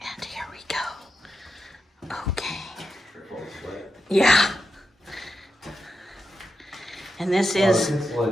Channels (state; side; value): normal; both; correlation 0.87